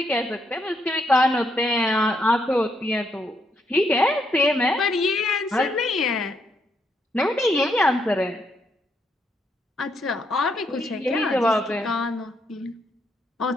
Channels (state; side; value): normal; both; correlation 0.76